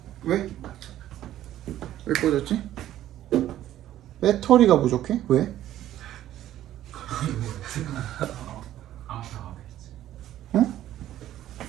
왜? 왜 꺼졌지? 배터리가 부족해? 왜? 응?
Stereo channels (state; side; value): quieter; left; 12.8 dB